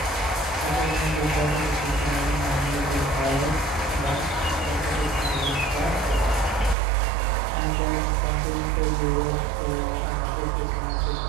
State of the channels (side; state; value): left; drops out; at 6.8 s